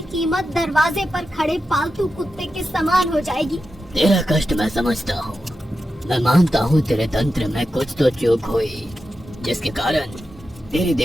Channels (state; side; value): normal; both; correlation 0.90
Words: कीमत दरवाजे पर खड़े पालतू कुत्ते के समान हो जाएगी। तेरा कष्ट मैं समझता हूँ। मैं मानता हूँ तेरे तंत्र में कुछ तो चूक हुई, जिसके कारण तेरी